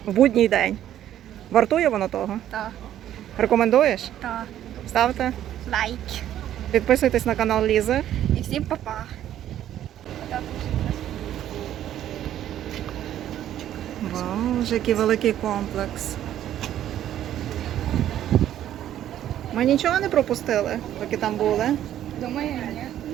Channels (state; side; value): quieter; left; 11.6 dB